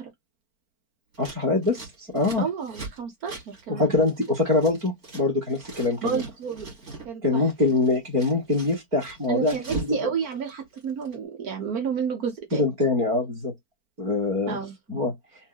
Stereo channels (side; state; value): left; late; 4.4 ms